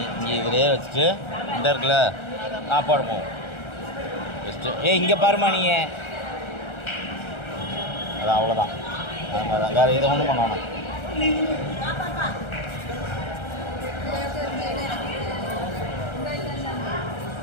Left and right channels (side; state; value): right; late; 1.3 ms